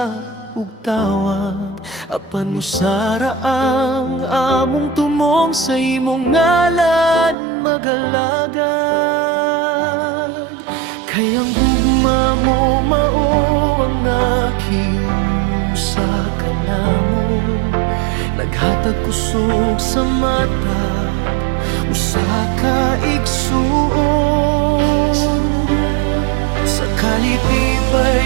ug tawag, apan usara ang among tumong sa imong ngalan magalagad. Kay ang gugma mo mao ang nakiusa ka namo, naghatag kusog sa mata, usa ka igsuon. Sa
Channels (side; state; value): left; drops out; at 7.4 s